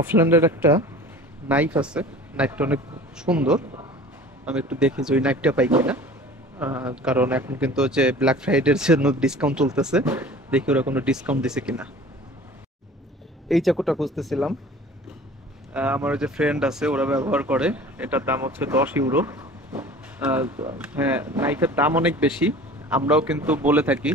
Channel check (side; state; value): both; normal; correlation 0.43